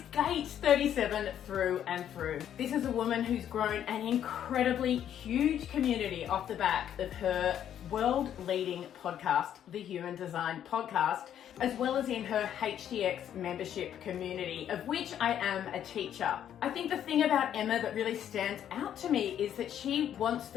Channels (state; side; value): quieter; right; 10.1 dB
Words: gate 37 through and through. This is a woman who's grown an incredibly huge community off the back of her world-leading podcast, the Human Design Podcast, as well as in her HDX membership community, of which I am a teacher. I think the thing about Emma that really stands out to me is that she wants